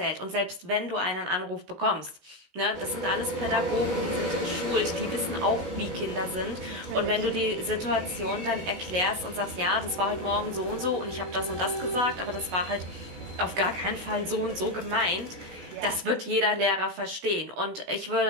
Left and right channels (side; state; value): left; late; 16 ms